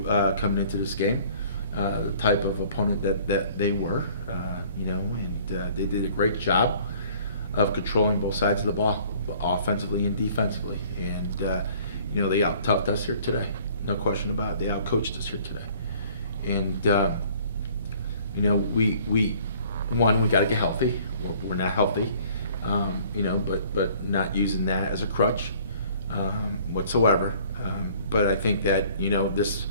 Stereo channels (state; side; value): inverted; both; correlation -0.54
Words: coming into this game the type of opponent that they were. And they did a great job of controlling both sides of the ball, offensively and defensively. And they out-toughed us here today, no question about it. They out-coached us here today. And we got to get healthy. We're not healthy. But not using that as a crutch whatsoever. But I think that this